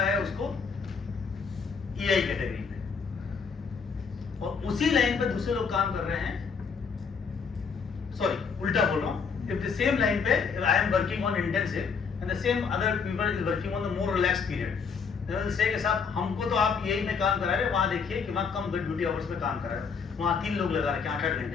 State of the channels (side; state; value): right; quieter; 5.8 dB